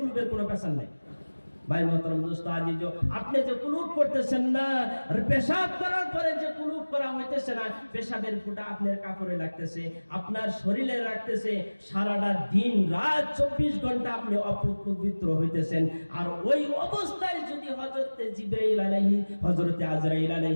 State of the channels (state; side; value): inverted; both; correlation -1.00